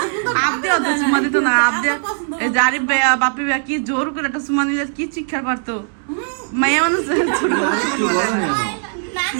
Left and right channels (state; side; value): silent; left; 67 dB below the other